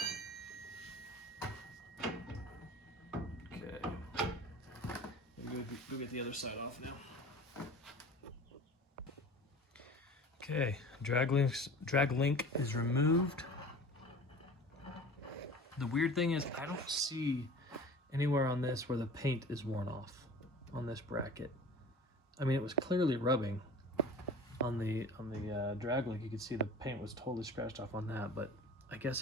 Okay, go get the other side off now. Okay, drag link is removed. The weird thing is I don't see anywhere on this where the paint is worn off on this bracket. I mean, it was clearly rubbing on the drag link. You could see the paint was totally scratched off on that, but I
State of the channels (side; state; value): both; normal; correlation 0.40